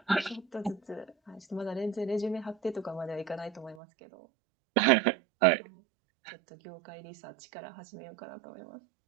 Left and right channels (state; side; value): drops out; left; at 3.8 s